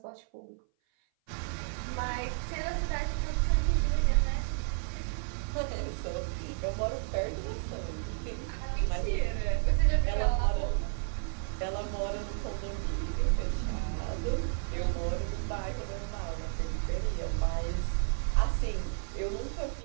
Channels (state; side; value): silent; left; 56 dB below the other